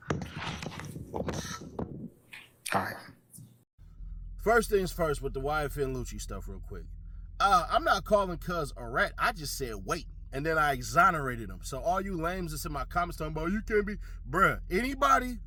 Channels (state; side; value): identical; both; correlation 1.00